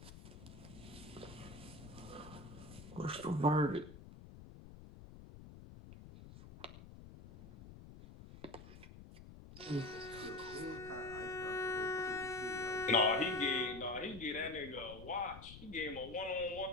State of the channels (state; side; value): noise; left; rumble, 15 dB below the sound